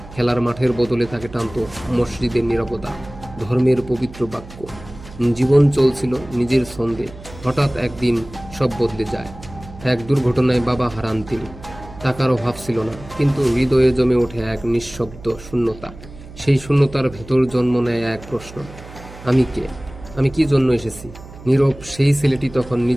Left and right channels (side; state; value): right; noise; hum, 17 dB below the sound